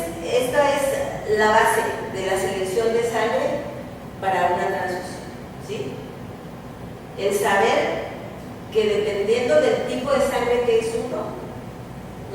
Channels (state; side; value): identical; both; correlation 1.00